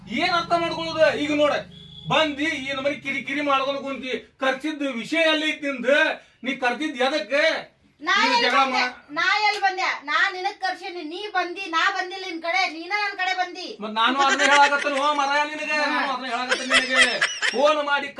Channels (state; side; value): identical; both; correlation 1.00